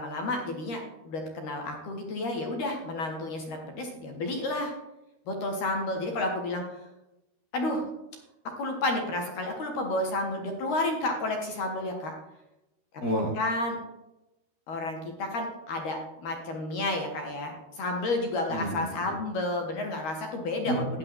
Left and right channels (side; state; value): right; late; 13 ms